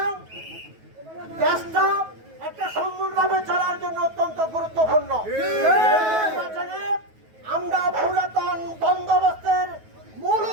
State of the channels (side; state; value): left; late; 9.3 ms